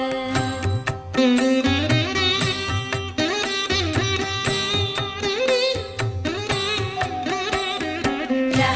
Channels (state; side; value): identical; both; correlation 1.00